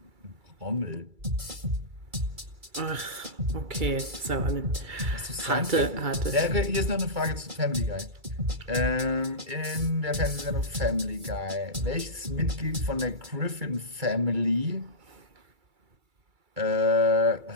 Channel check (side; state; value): left; late; 2.3 ms